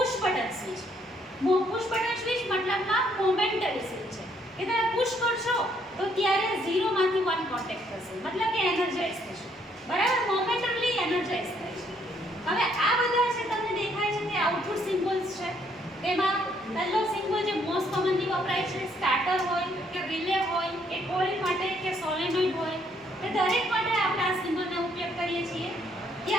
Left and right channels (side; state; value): both; normal; correlation 0.69